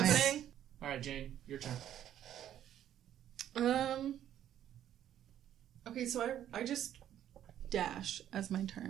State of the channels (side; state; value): left; quieter; 11.0 dB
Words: happening? All right, Jane, your turn. Okay, so I just dash as my